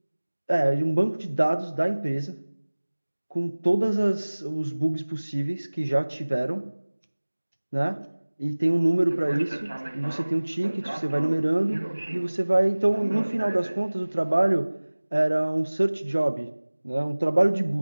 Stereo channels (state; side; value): inverted; both; correlation -1.00